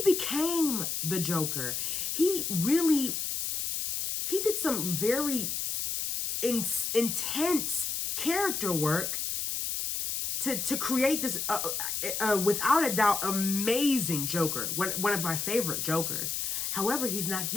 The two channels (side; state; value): left; noise; hiss, 1 dB below the sound